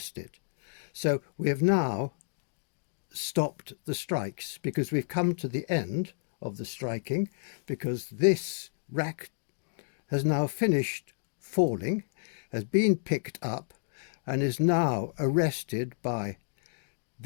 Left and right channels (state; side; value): silent; right; digital silence